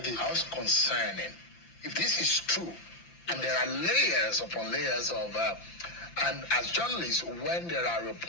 How concerning. If this is true, and there are layers upon layers of... and as journalists, when there are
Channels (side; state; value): right; late; 5.8 ms